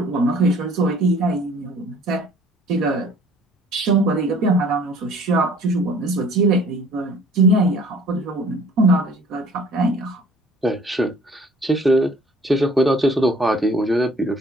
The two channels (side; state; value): both; normal; correlation 0.53